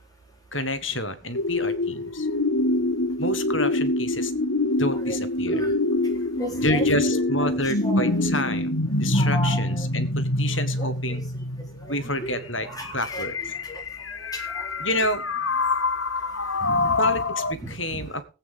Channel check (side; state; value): both; normal; correlation 0.16